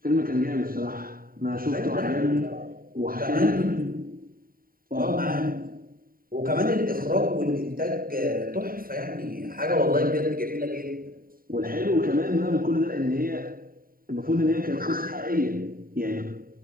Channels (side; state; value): left; late; 0.42 ms